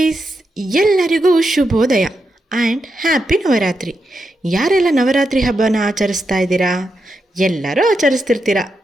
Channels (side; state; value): both; normal; correlation 0.85